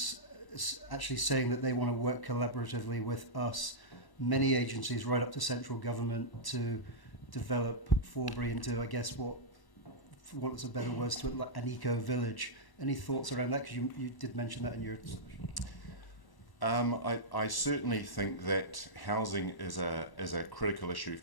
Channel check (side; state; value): right; late; 1.1 ms